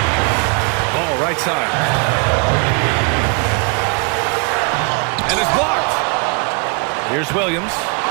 Ball right side. And it's blocked. Here's Williams.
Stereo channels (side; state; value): left; quieter; 35.7 dB